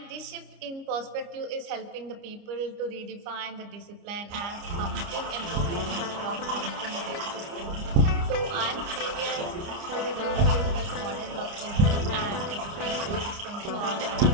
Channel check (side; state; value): left; late; 29 ms